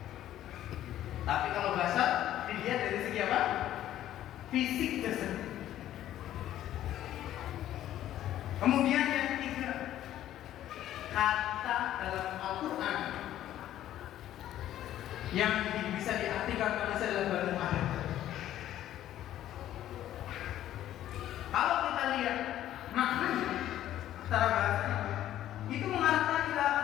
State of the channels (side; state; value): right; quieter; 12.5 dB